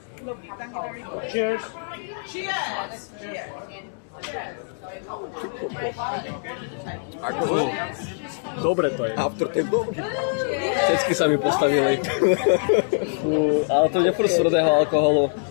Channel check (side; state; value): right; silent; digital silence